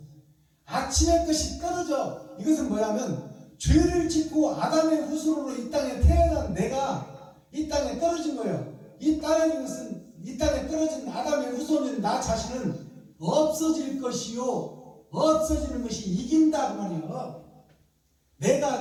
아침의 것이 떨어져. 이것은 뭐냐면 죄를 짓고 아담의 후손으로 이 땅에 태어난 내가 이 땅에 떨어진 거예요. 이 땅에 떨어진 아담의 후손인 나 자신은 없어질 것이요 없어지는 것이 이긴다 그 말이에요.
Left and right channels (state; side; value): identical; both; correlation 1.00